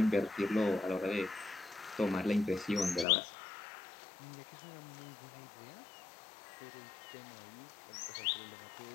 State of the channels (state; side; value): drops out; right; at 3.1 s